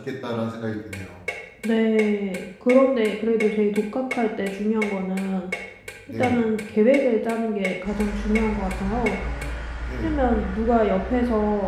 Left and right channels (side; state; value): both; identical; correlation 1.00